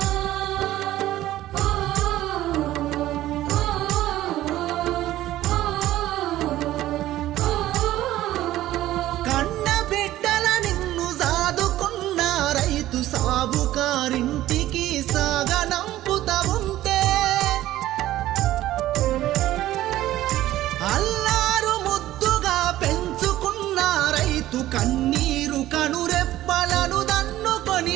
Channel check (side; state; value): left; quieter; 14.6 dB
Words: సాబుకారింటికి సాగనంపుతా ఉంటే అల్లారు ముద్దుగా పెంచుకున్న రైతు కన్నీరు కనురెప్పలను దన్నుకొని